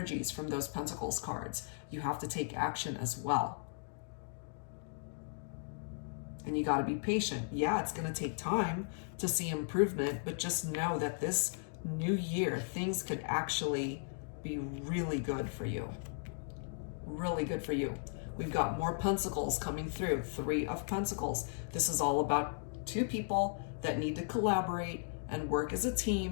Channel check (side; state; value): right; silent; digital silence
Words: from those Pentacles cards. You have to take action as well. And you got to be patient. Yeah, it's going to take time to see improvement, but just know that this new year, things could actually be really good for you. Really good for you. We've got more Pentacles coming through, 3 of Pentacles. This is all about 2 people that need to collaborate and work as a